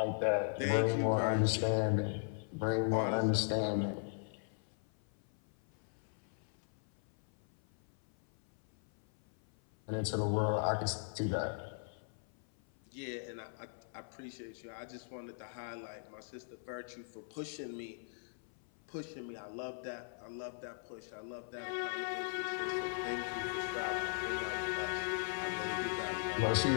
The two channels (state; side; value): silent; right; 52 dB below the other